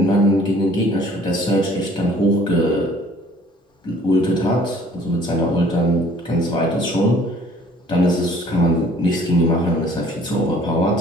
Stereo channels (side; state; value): both; normal; correlation 0.55